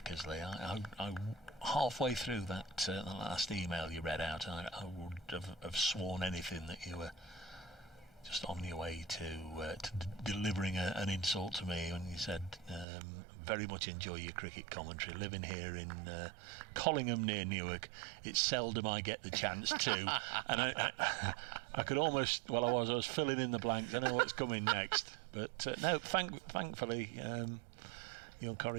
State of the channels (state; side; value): drops out; left; at 12.9 s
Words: I halfway through that the last email you read out, I would have sworn anything that you were just on your way to delivering an insult to me when you said, very much enjoy your cricket commentary. Living here in Collingham near Newark, it's seldom I get the chance to. And I could almost, I was filling in the blanks. I know what's coming next. But no, thankfully, your